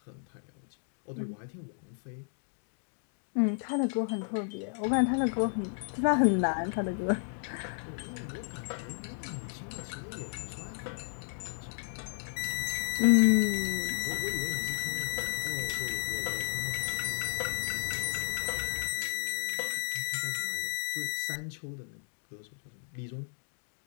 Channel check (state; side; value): silent; right; digital silence